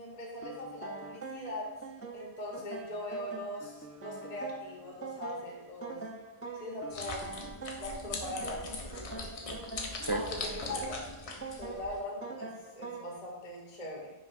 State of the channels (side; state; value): right; late; 1.6 ms